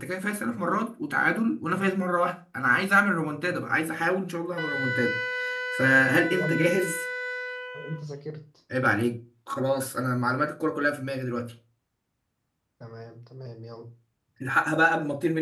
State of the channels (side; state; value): both; identical; correlation 1.00